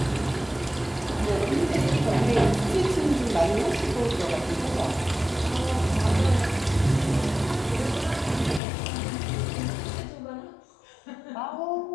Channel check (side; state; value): right; drops out; at 8.6 s